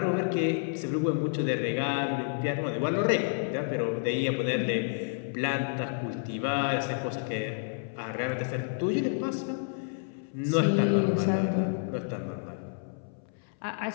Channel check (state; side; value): silent; right; 58 dB below the other